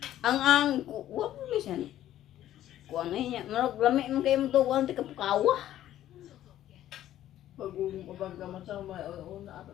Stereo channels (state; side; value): quieter; right; 12.6 dB